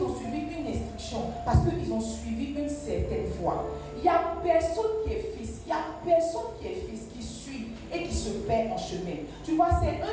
ont suivi une instruction, parce qu'ils ont suivi une certaine voie. Il n'y a personne qui est fils, il n'y a personne qui est fils qui suit et qui se perd en chemin. Tu vois, c'est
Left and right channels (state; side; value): identical; both; correlation 1.00